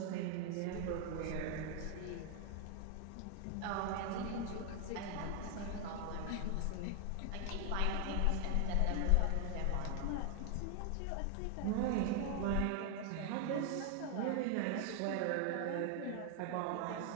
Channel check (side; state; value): both; different; correlation 0.00